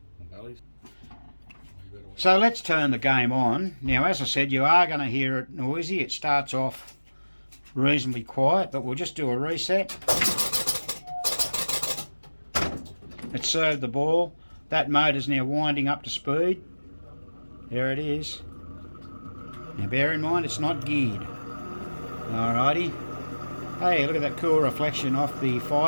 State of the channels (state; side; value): inverted; both; correlation -1.00